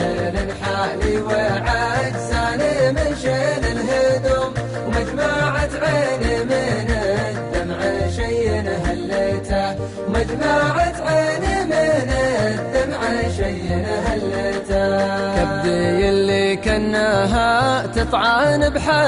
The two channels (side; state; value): both; identical; correlation 1.00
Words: حالي وعجزاني من شيل الهدوم ومجمعة عيني من الدمع شي هلته ومجمعة عيني من الدمع شي هلته كبدي اللي كناها تطعن